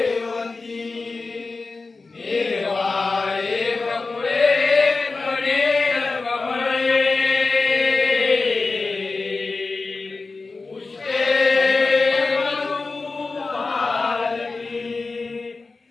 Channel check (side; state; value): right; quieter; 3.9 dB